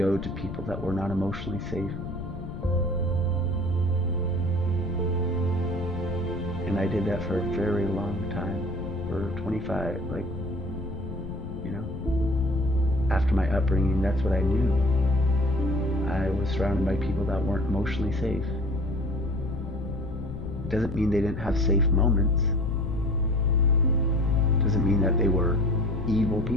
to people that were not emotionally safe, and I did that for a very long time, for 25, like, you know, after my upbringing, that's what I knew. I was surrounded by people that weren't emotionally safe. It doesn't mean they didn't have safe moments. It doesn't mean that they were evil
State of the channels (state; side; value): noise; left; rumble, 9 dB below the sound